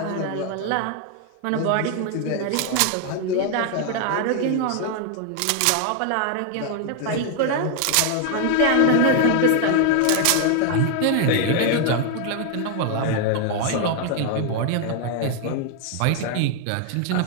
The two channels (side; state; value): both; different; correlation 0.00